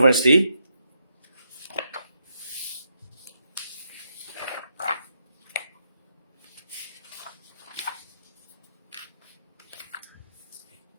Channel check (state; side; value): inverted; both; correlation -0.80